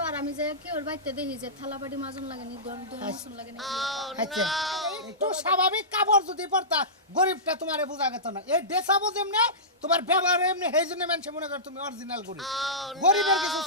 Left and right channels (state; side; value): normal; both; correlation -0.20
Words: আর আমি যে কি ওর বাইতে দেখি যে থালা বাটি মাজুন লাগেনি দম মাসুন লাগেনি আচ্ছা একটু স্বাভাবিক কাপড় যদি পরতা গরিবটা তোমারে বোঝা গেত না এই ড্রেসাবো যেমনে তোমার ব্যবহার এমনি সেই জন্য মানুষ মনে করে তুমি অরিজিনাল গরিব গরিবের কিছু